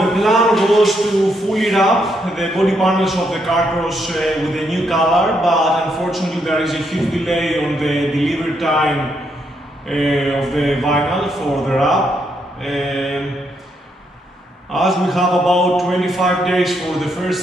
the plan was to fully wrap the body panels of the Kartcross with a new color, but unfortunately there is a huge delay on the delivery time of the vinyl for the wrap. As we have about 25 days for the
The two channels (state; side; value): normal; both; correlation 0.77